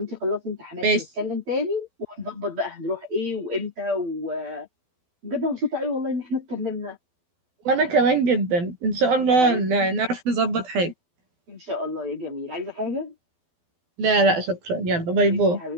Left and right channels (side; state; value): left; late; 12 ms